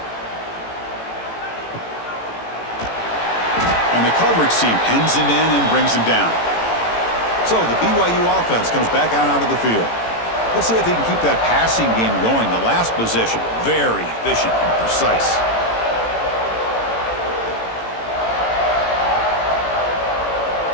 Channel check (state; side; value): late; right; 18 ms